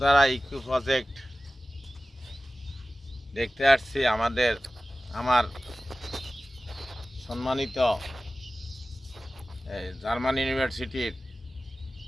ইকো প্রজেক্ট দেখতে আসছি। আমার সম্মানিত জার্মান ইউনিভার্সিটির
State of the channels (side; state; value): both; normal; correlation 0.96